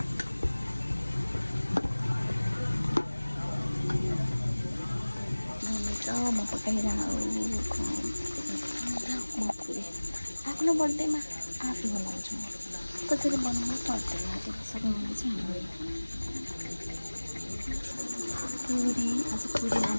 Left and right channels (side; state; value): both; inverted; correlation -1.00